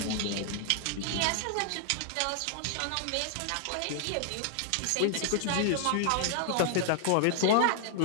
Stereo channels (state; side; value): different; both; correlation 0.00